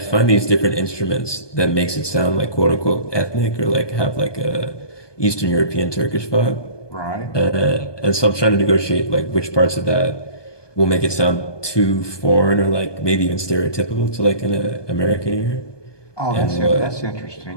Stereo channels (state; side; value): late; right; 1.2 ms